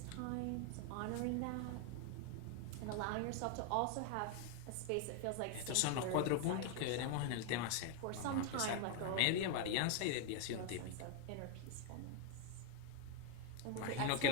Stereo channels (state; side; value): different; both; correlation 0.01